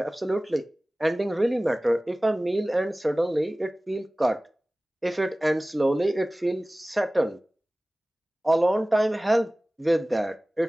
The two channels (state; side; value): normal; both; correlation 0.98